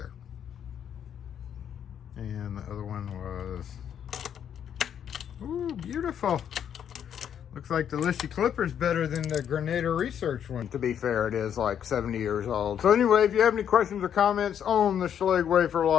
And the other one was... Ooh, beautiful. Looks like the Lishi Clipper's better than the Granada Research one. To be fair, it is like 70 years old. So anyway, if you have any questions or comments on the Schlage wafer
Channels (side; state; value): right; quieter; 8.9 dB